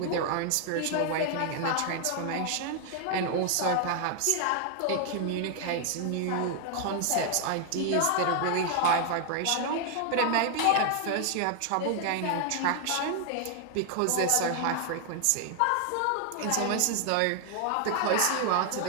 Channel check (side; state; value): both; different; correlation 0.00